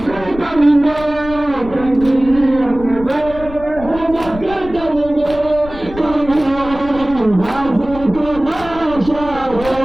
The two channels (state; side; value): noise; left; rumble, 14 dB below the sound